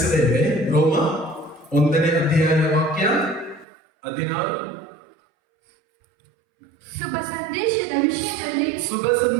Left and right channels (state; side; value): drops out; left; at 3.7 s